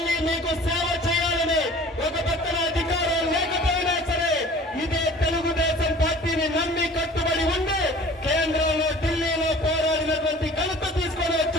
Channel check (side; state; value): both; normal; correlation 0.46